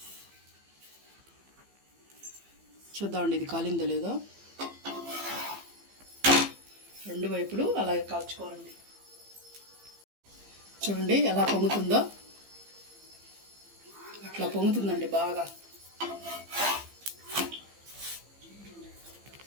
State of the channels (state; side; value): late; left; 15 ms